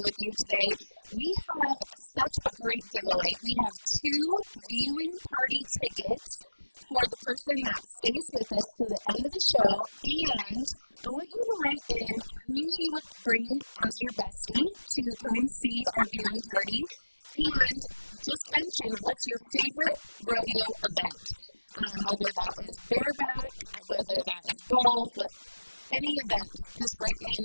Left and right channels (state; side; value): inverted; both; correlation -1.00